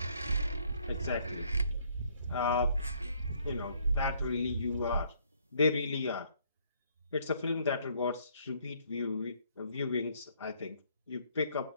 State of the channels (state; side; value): inverted; both; correlation -0.66